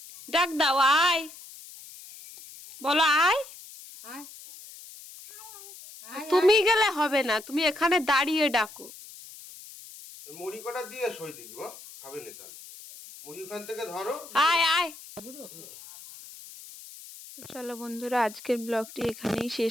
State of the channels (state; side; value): noise; left; hiss, 17 dB below the sound